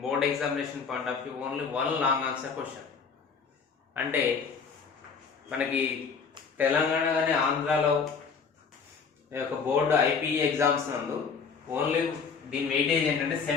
board examination point of view only one long answer question. అంటే మనకి తెలంగాణ కానీ ఆంధ్రాలో బోర్డు ఐపీఈ ఎగ్జామ్స్ నందు ఓన్లీ దీని వెయిటేజ్ ఏంటంటే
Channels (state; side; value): quieter; right; 5.6 dB